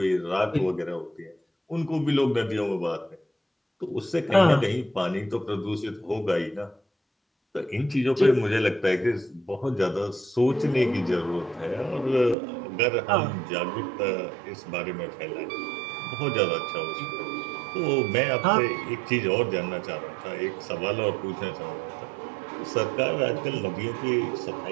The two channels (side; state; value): left; drops out; at 12.4 s